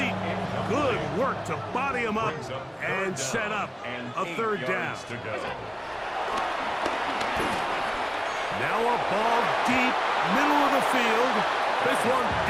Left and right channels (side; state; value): both; identical; correlation 1.00